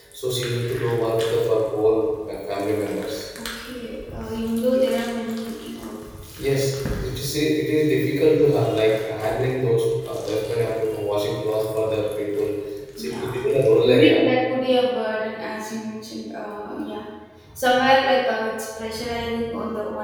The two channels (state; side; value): identical; both; correlation 1.00